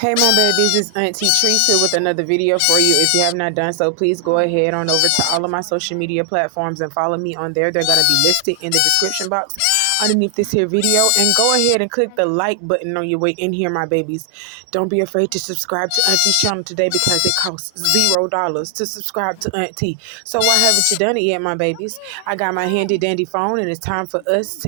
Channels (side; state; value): both; different; correlation 0.00